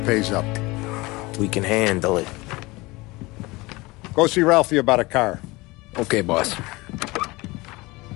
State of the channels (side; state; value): right; quieter; 22.6 dB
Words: up. We can handle it. Go see Ralphie about a car. Okay, boss.